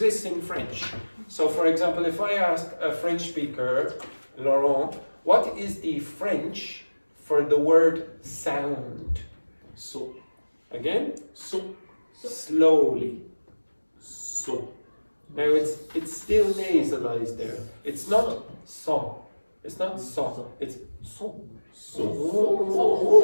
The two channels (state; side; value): inverted; both; correlation -1.00